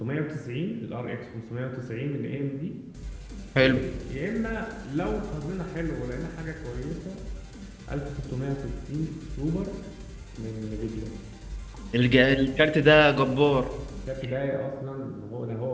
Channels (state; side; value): identical; both; correlation 1.00